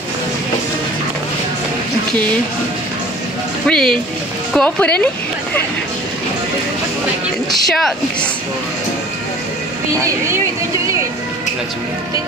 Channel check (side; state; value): both; normal; correlation 0.47